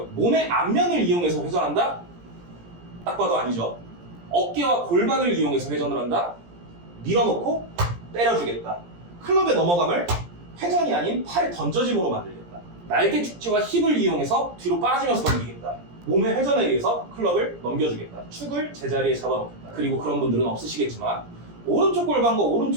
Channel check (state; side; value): late; left; 17 ms